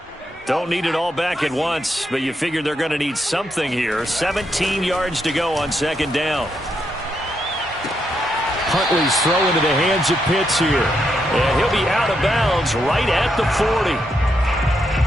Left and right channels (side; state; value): both; normal; correlation 0.80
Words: Don't need it all back at once, but you figure they're going to need something here. 17 yards to go on 2nd down. Huntley's throw into the hands of Pitts here. And he'll be out of bounds right at the 40.